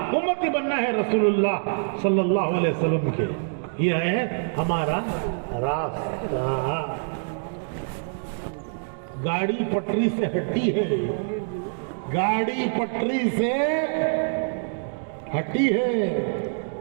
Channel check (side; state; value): left; silent; digital silence